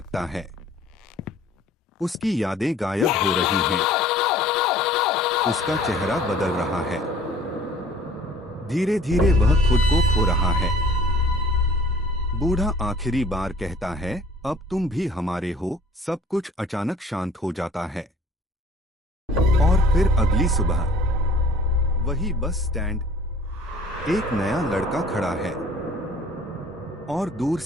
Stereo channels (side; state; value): both; normal; correlation 0.51